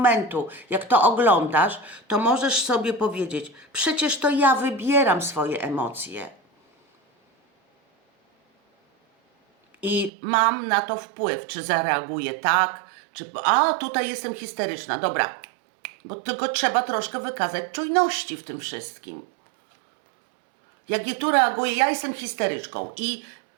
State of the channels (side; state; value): left; drops out; at 10.1 s